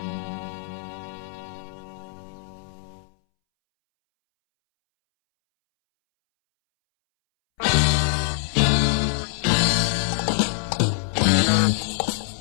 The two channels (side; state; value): right; silent; 63 dB below the other